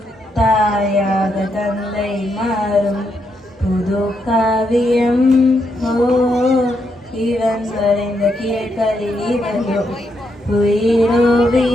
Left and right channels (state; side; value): normal; both; correlation 0.79